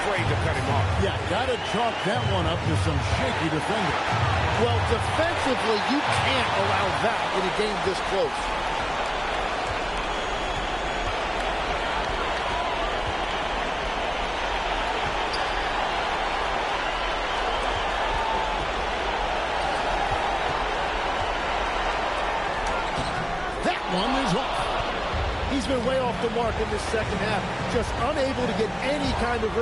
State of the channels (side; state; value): both; identical; correlation 1.00